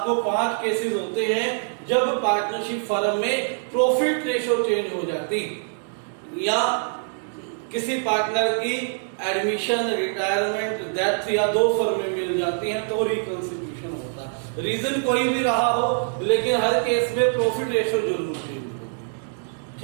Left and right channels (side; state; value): left; silent; digital silence